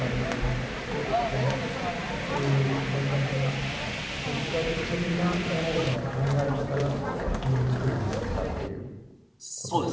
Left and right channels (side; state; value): both; identical; correlation 1.00